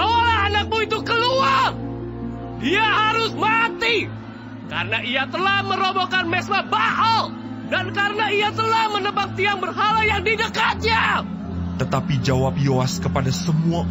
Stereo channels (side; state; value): both; identical; correlation 1.00